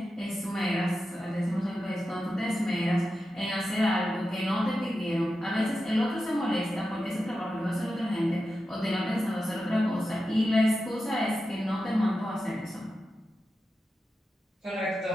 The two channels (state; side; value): normal; both; correlation 0.91